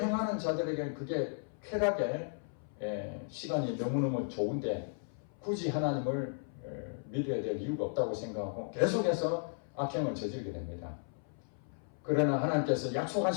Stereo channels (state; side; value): silent; right; 54 dB below the other